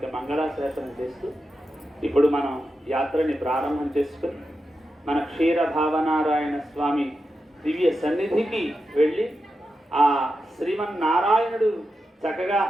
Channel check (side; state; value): both; normal; correlation 0.89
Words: మంగళాశాసనం చేస్తూ ఇప్పుడు మనం యాత్రని ప్రారంభం చేసుకుని మన క్షీర భావనారాయణ స్వామి దివ్య సన్నిధికి వెళ్ళి ఆ శ్రీమన్నారాయణుడు చక్కగా